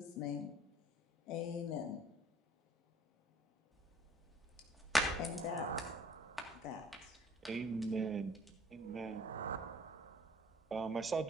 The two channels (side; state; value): both; normal; correlation 0.54